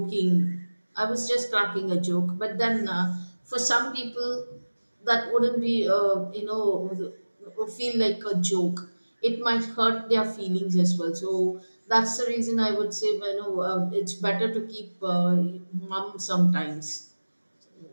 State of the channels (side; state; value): both; inverted; correlation -1.00